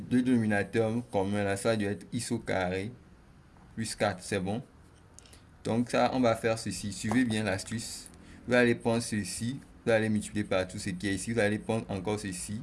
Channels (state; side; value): identical; both; correlation 1.00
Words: commun là, ça doit être x au carré plus 4, c'est bon. Donc ça, on va faire ceci. Suivez bien l'astuce. Vous allez prendre ceci, vous allez multiplier par tout ce qui est ici. Vous allez prendre encore ceci,